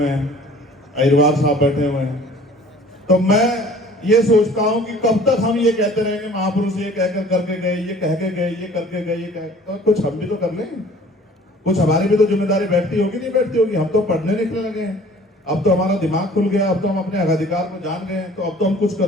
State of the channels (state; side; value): normal; both; correlation 0.50